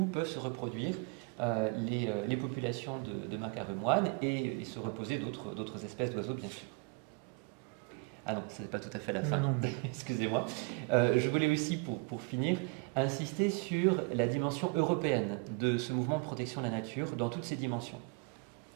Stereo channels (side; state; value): left; quieter; 30.5 dB